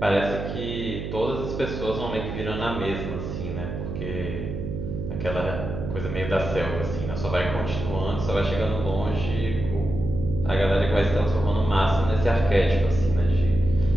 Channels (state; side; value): noise; right; hum, 5 dB below the sound